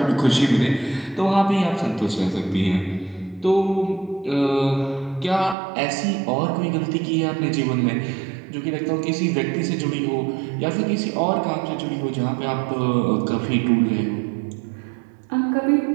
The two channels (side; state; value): left; drops out; at 5.6 s